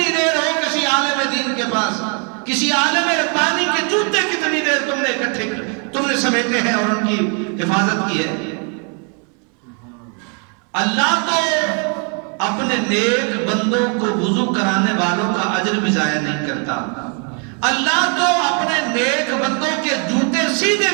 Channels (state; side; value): quieter; left; 38.4 dB